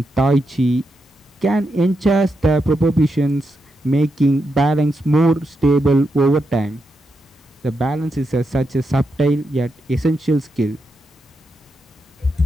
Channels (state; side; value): normal; both; correlation 0.85